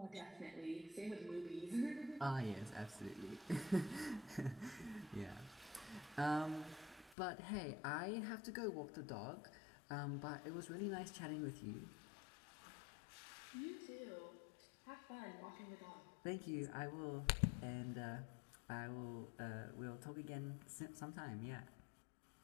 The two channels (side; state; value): right; drops out; at 7.2 s